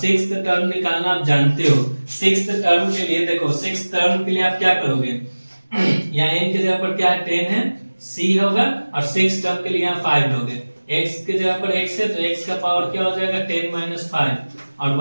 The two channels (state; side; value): inverted; both; correlation -1.00